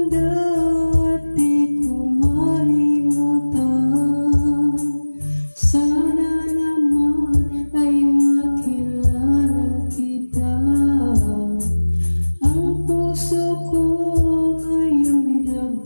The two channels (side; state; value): both; inverted; correlation -1.00